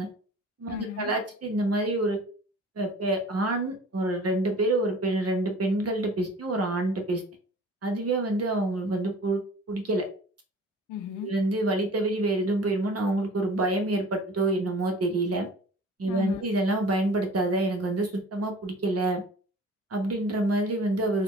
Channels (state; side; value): normal; both; correlation 0.46